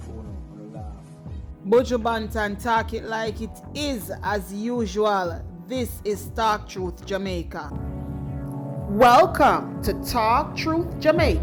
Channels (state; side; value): identical; both; correlation 1.00